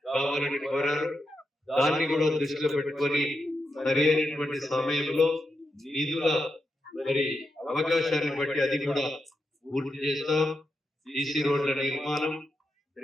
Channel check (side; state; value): both; normal; correlation 0.86